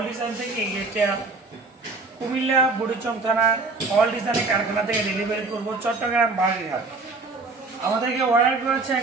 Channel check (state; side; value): quieter; left; 3.8 dB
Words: ডিজাইন থেকে এই গেটটা কুমিল্লা বুড়িচং থানা অল ডিজাইনের কারখানা থেকে ডেলিভারি করবো চট্টগ্রাম বাগেরহাট। আমাদেরকে অর্ডার করেছে